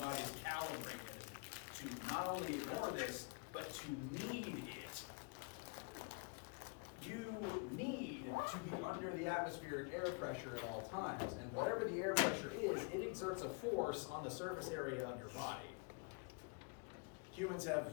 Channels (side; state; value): right; quieter; 33.2 dB